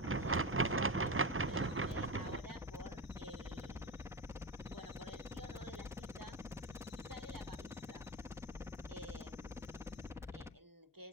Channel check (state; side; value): normal; both; correlation 0.19